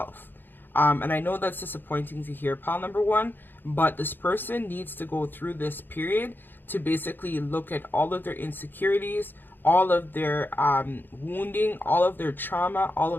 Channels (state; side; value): late; right; 0.095 ms